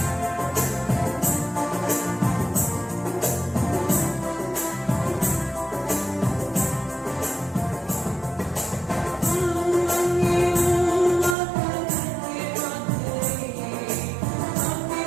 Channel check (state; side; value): drops out; left; at 11.4 s